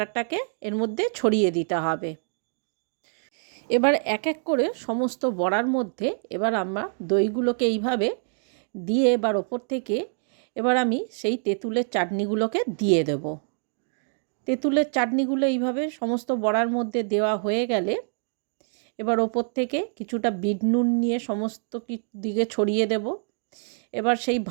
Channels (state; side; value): silent; left; 59 dB below the other